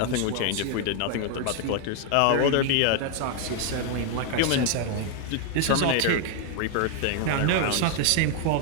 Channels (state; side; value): different; both; correlation 0.00